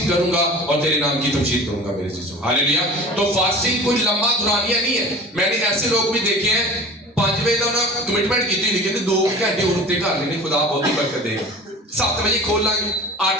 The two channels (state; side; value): normal; both; correlation 0.39